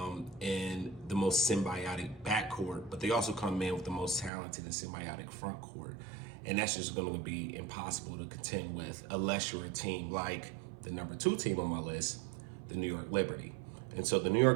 and the most symbiotic backcourt, but they also come in with the most talented and symbiotic front court. And that's just going to be impossible to contend with unless you're a team like the number 2 team on my list, the New York Liberty. And so the New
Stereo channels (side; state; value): left; drops out; at 4.3 s